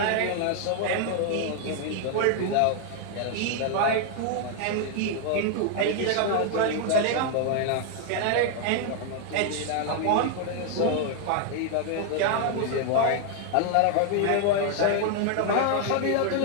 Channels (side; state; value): both; different; correlation 0.00